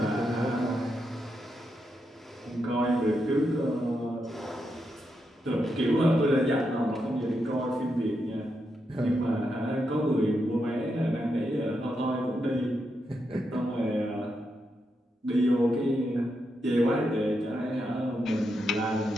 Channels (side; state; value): both; normal; correlation 0.83